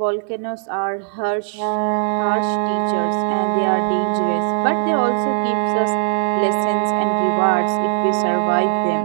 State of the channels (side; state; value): left; silent; digital silence